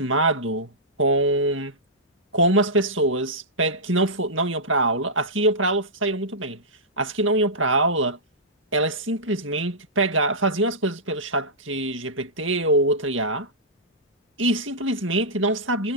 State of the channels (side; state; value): both; normal; correlation -0.14